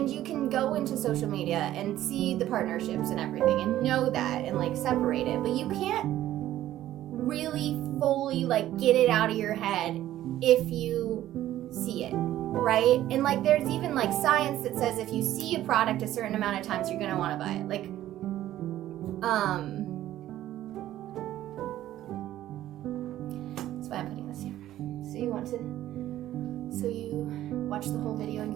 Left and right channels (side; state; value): left; quieter; 13.5 dB